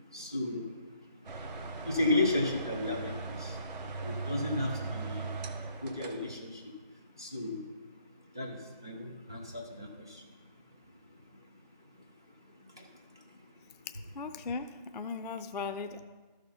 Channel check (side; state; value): both; inverted; correlation -0.63